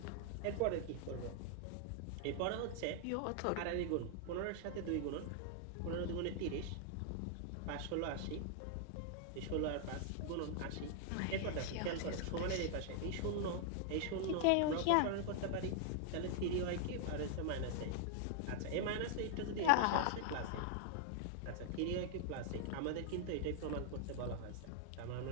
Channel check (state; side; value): different; both; correlation 0.00